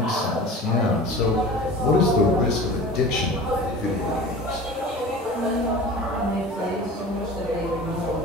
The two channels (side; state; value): both; normal; correlation 0.38